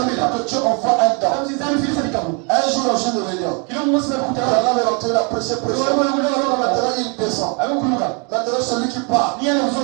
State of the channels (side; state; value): left; quieter; 34.7 dB